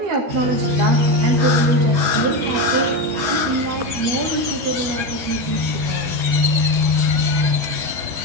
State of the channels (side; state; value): left; late; 12 ms